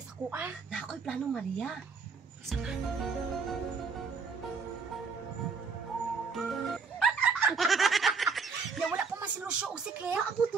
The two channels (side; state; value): left; quieter; 5.0 dB